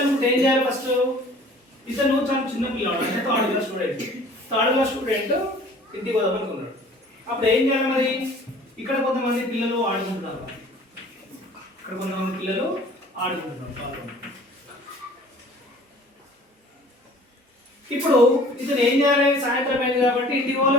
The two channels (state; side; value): normal; both; correlation 0.49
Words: ఏం చేయాలి? ఫస్ట్ ఇతను చాలా చిన్న పిల్లవాడు, అంటే థర్డ్ క్లాస్ స్టూడెంట్. ఇంటికి పోదామనుకున్నాడు. అప్పుడు ఏం చేయాలి మరి? ఇక్కడ కొంతమంది పిల్లలు ఆడుకుంటున్నారు. ఇప్పుడు ఇతను ఏం చేయాలి? సాయంత్రం అయింది కాబట్టి ఇంటికి పోవాలి